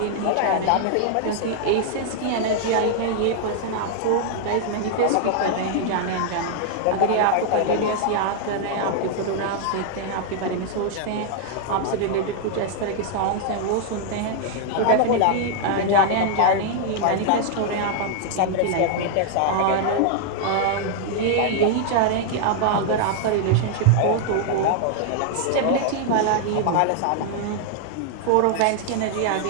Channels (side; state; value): both; different; correlation 0.00